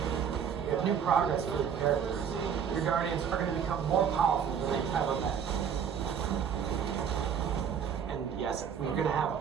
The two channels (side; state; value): left; quieter; 7.7 dB